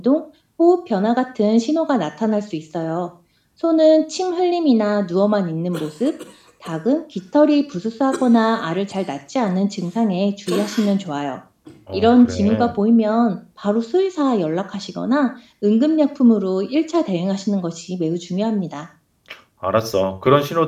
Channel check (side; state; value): both; identical; correlation 1.00